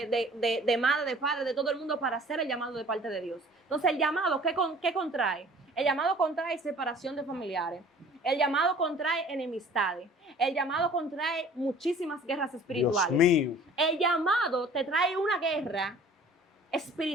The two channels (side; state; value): both; normal; correlation 0.49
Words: madre, de padre, de todo el mundo para hacer el llamado de parte de Dios. Entonces, el llamado, ¿qué contrae? El llamado contrae separación de familiares. El llamado contrae enemistades. El llamado contrae muchísimas guerras espirituales. Dios mío. El llamado te trae una guerra